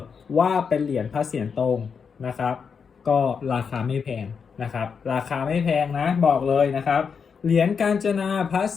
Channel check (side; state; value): right; quieter; 6.1 dB